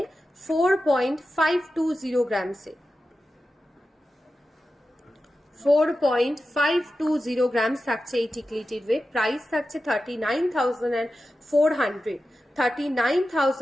4.520 গ্রামসে, 4.520 গ্রামস থাকছে এই টিকলিটির ওয়েট। প্রাইস থাকছে 39,400,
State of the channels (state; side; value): normal; both; correlation 0.92